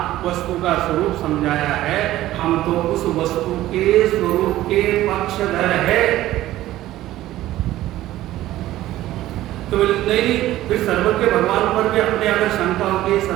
वस्तु का स्वरूप समझाया है, हम तो उस वस्तु के स्वरूप के पक्षधर है। तो नहीं, फिर सर्वज्ञ भगवान पर भी अपने अगर शंका होगी,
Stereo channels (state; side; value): quieter; left; 15.0 dB